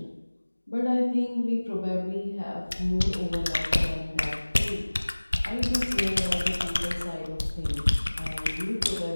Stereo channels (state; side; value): inverted; both; correlation -1.00